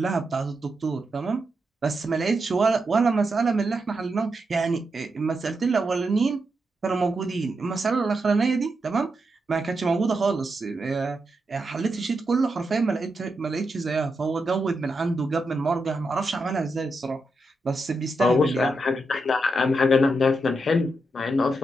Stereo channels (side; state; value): both; normal; correlation 0.85